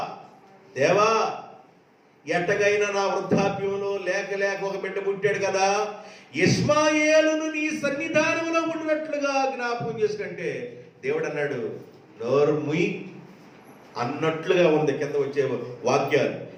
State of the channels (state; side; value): identical; both; correlation 1.00